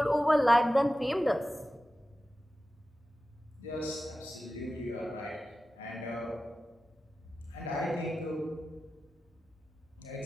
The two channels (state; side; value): normal; both; correlation 0.94